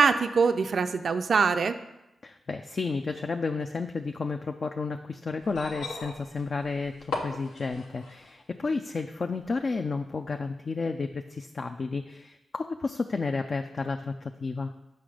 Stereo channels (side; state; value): both; normal; correlation 0.85